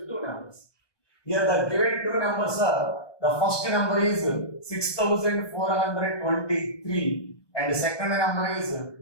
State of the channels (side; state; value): right; late; 1.2 ms